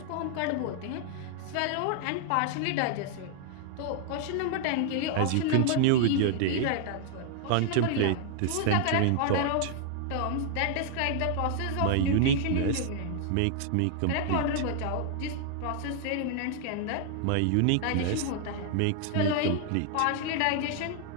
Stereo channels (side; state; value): both; different; correlation 0.00